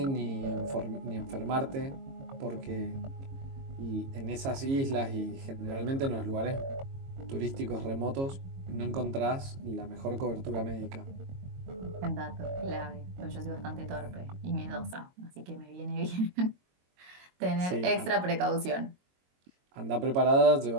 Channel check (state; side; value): late; left; 22 ms